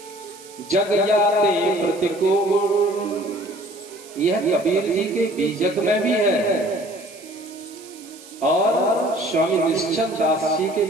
जग जाते प्रतिकूल। यह कबीर जी के बीजक में भी है और स्वामी निश्चल दास जी के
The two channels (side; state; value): right; noise; hiss, 20 dB below the sound